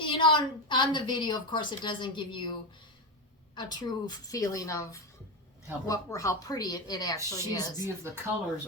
know, on the video, of course, it doesn't give you a true feeling of how pretty it actually is. She's beautiful.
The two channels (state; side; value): normal; both; correlation 0.15